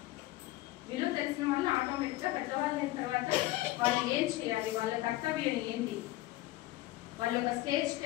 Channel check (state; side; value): quieter; right; 17.4 dB